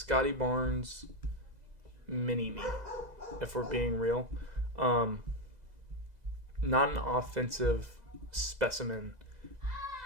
Barnes mini-me, if we're being real. Not an offensive specimen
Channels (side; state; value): left; late; 2.0 ms